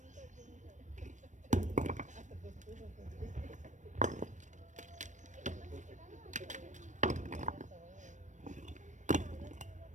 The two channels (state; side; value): late; left; 0.35 ms